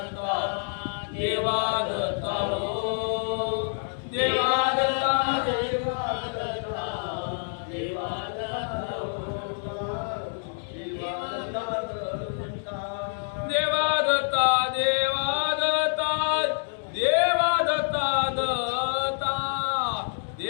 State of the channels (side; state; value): right; silent; digital silence